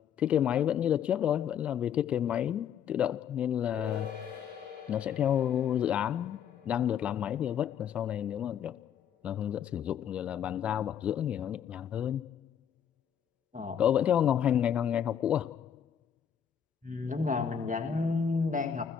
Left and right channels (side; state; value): right; quieter; 8.6 dB